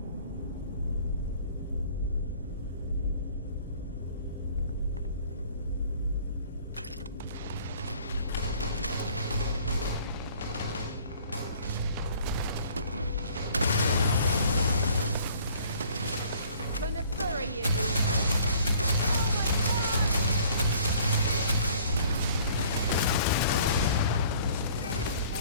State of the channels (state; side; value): inverted; both; correlation -0.55